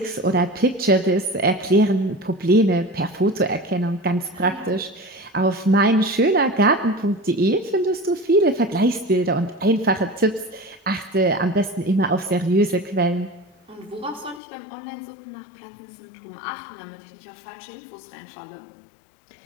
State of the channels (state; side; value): drops out; right; at 14.4 s